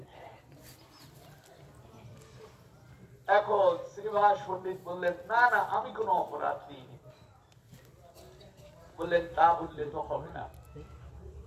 দেয়। এখন শ্রীবাস পণ্ডিত বললেন না না আমি কোনো অপরাধ দিইনি। বললেন তা বললে তো হবে না,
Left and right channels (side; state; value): both; identical; correlation 1.00